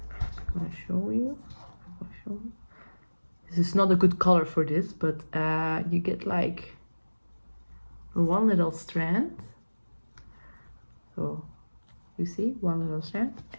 I'm gonna show you. This is not a good color for this, but you get like one little strand. So you see, one little strand,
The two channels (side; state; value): both; inverted; correlation -1.00